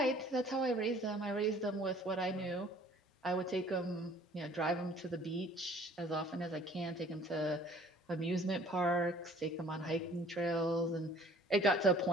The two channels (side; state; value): both; normal; correlation 0.53